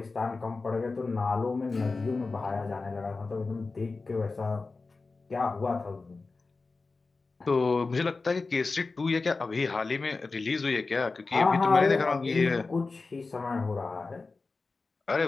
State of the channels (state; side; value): quieter; right; 3.9 dB